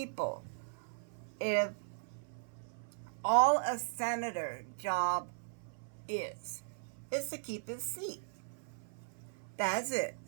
If all a senator's job is to keep his seat. That's it.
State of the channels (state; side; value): silent; left; 52 dB below the other